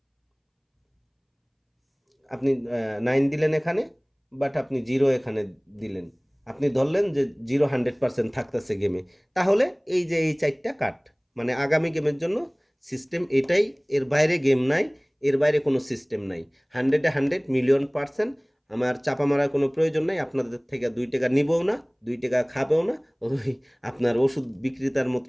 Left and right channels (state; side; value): identical; both; correlation 1.00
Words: আপনি 9 দিলেন এখানে, বাট আপনি 0 এখানে দিলেন, আপনি ধরলেন যে 0 100% থাকতেছে গেমে, তাহলে এই যে এই 4টা কাট, মানে আগামী গেমের জন্য সিস্টেম এটাই, এর বাইরে গেম নাই, এর বাইরে কোনো সিস্টেম নাই। 100-এ 100 মিলিয়ন%। আমার চাপা মারার কোনো প্রয়োজন নাই, আপনাদের থেকে 2 টাকা নিবও না, 2 টাকা খাবেও না, ওই আপনার ওষুধ বিক্রেতার